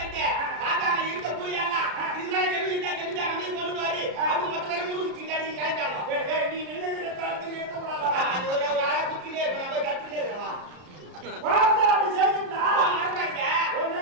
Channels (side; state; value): left; late; 33 ms